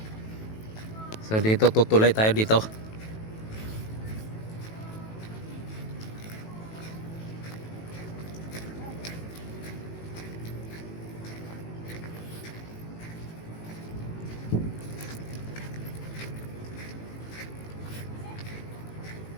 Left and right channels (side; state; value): right; late; 18 ms